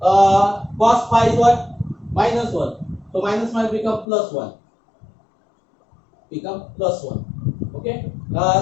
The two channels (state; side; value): drops out; right; at 4.0 s